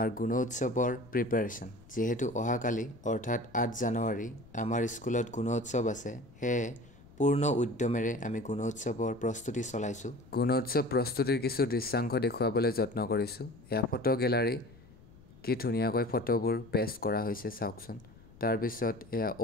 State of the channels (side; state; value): left; noise; rumble, 23 dB below the sound